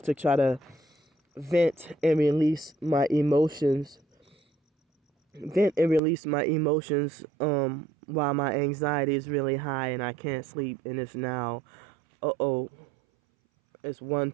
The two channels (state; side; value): drops out; left; at 6.0 s